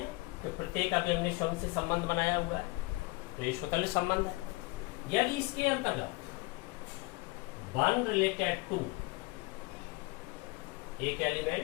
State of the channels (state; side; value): quieter; right; 23.4 dB